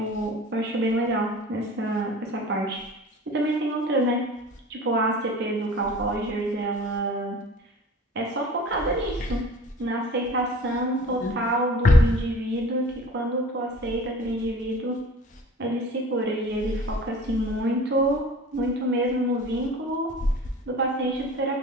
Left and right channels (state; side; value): normal; both; correlation 0.43